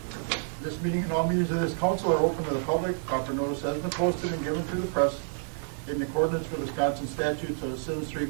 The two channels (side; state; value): left; silent; digital silence